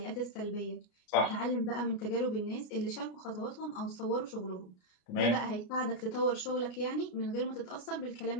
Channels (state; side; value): late; right; 33 ms